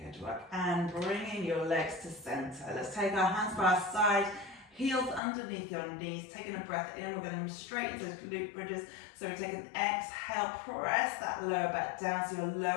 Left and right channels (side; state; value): right; drops out; at 5.2 s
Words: work. And bringing your legs to center. Let's take our hands by our side, heels underneath your knees. Taking a breath in, we're going to move straight into those glute bridges. So we take an exhale, press that lower back down so your